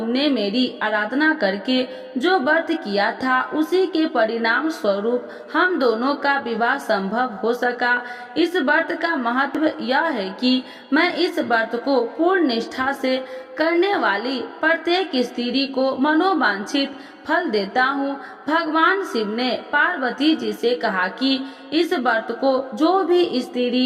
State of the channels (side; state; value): both; identical; correlation 1.00